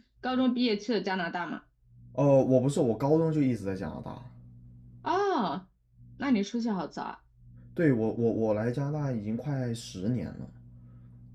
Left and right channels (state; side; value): identical; both; correlation 1.00